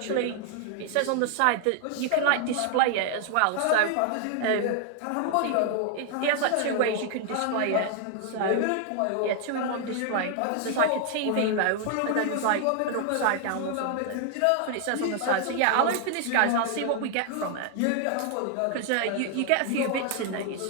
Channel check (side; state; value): both; different; correlation 0.00